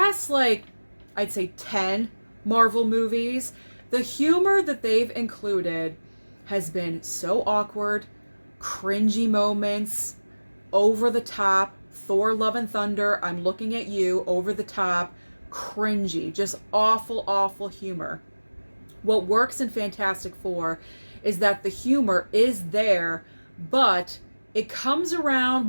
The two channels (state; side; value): inverted; both; correlation -1.00